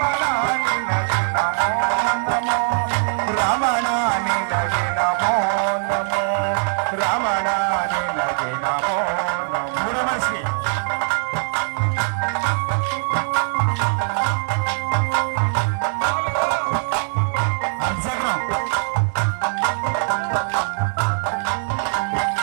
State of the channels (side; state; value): left; silent; digital silence